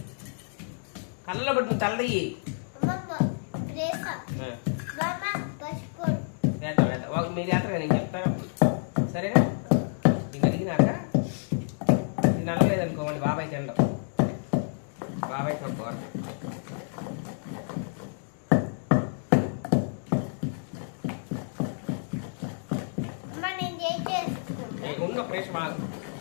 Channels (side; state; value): right; silent; digital silence